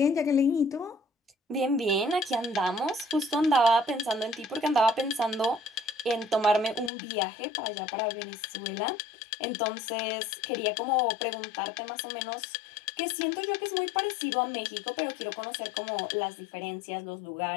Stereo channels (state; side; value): drops out; right; at 6.9 s